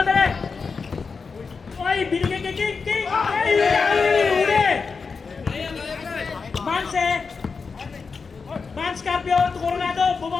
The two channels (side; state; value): right; quieter; 5.0 dB